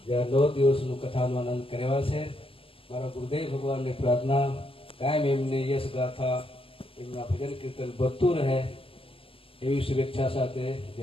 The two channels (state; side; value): late; right; 0.27 ms